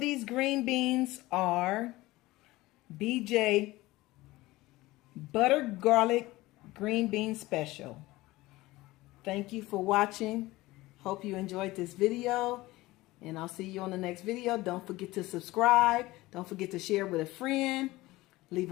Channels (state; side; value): quieter; right; 19.0 dB